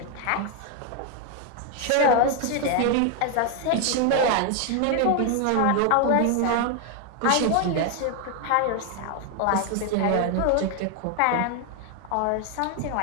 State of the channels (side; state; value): both; different; correlation 0.01